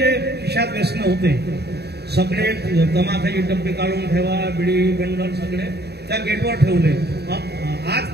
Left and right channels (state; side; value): late; left; 0.48 ms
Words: खिशात व्यसन होते सगळे तमाखाची डब्बे काढून ठेवा, बिडी बंडल सगळे त्या गेटवर ठेवले. आज